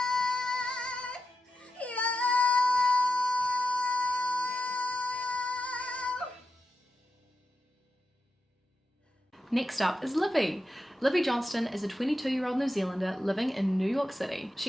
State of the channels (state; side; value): normal; both; correlation 0.89